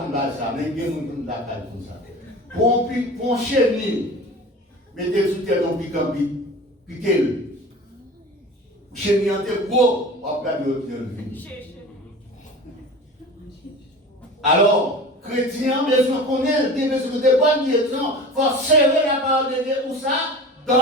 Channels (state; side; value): normal; both; correlation 0.36